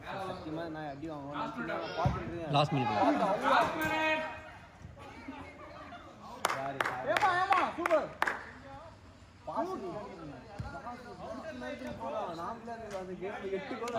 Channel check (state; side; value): identical; both; correlation 1.00